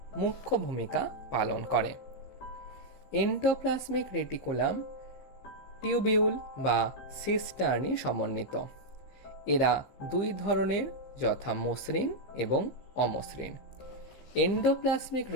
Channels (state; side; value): late; right; 15 ms